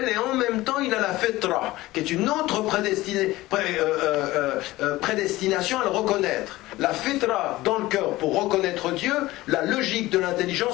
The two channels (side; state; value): right; quieter; 18.1 dB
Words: et en même temps il a la fitra, qui est une autre prédestination à le reconnaître. La fitra dans le cœur pour reconnaître Dieu, la logique de